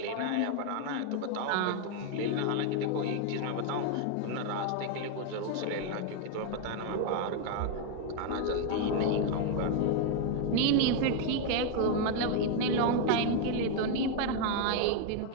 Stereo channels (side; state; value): both; different; correlation 0.00